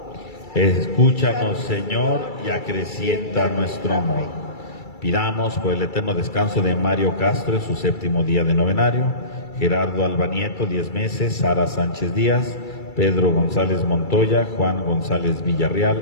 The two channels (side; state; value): right; late; 2.3 ms